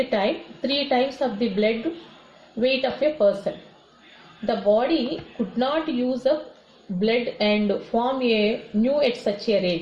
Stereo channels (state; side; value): identical; both; correlation 1.00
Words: time, 3 times of the blood weight of a person. The body could not use up blood and form a new at such a